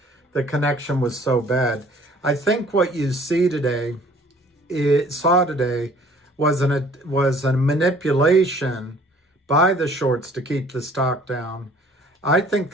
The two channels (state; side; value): normal; both; correlation 0.54